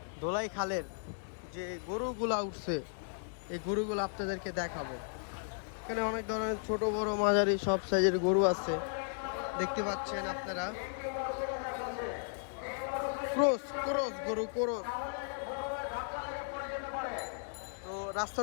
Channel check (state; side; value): silent; right; digital silence